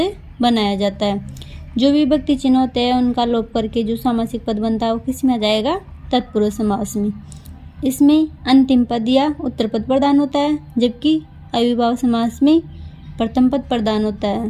बनाया जाता है। जो विभक्ति चिन्ह होते हैं उनका लोप करके जो सामासिक पद बनता है वो किस में आ जाएगा? तत्पुरुष समास में। इसमें अंतिम पद या उत्तर पद प्रदान होता है, जबकि अव्ययीभाव समास में प्रथम पद प्रदान होता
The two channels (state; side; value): identical; both; correlation 1.00